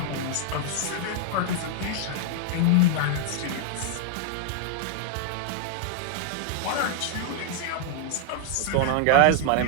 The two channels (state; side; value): different; both; correlation 0.00